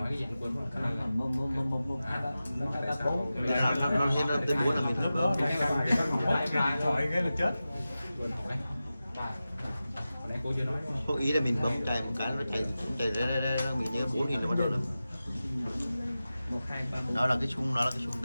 cái gì anh quên mất. Cả lắm mà 1, 2, 3, 4. Nó thêm nó tên muốn là mình Lúc đó bấm điện thoại cái là chết. Quên hỏi. Hồi nãy cô chưa nói. có ý là mình bấm chạy một cái nó chạy ra nó bị như 4.000 là bắt đầu là 1, 2, 3, 4. đó là cái chung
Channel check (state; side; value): inverted; both; correlation -0.94